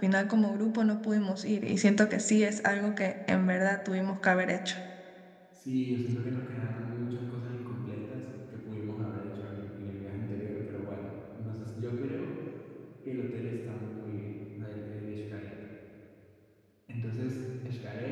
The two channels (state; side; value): identical; both; correlation 1.00